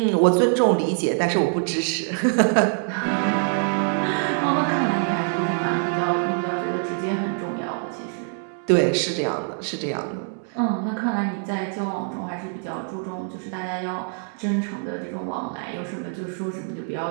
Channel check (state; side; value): silent; left; 55 dB below the other